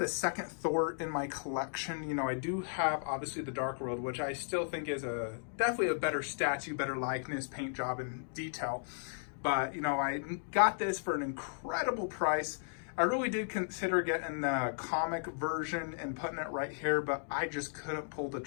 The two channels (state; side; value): silent; right; digital silence